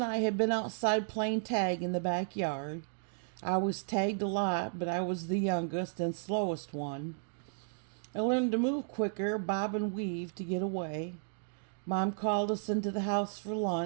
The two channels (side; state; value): left; silent; digital silence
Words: I had been outside playing tag in the backyard. I was tagged a lot, but I was the youngest and slowest one. I learned to move quicker, bob and weave to get away. Mom called us into the house for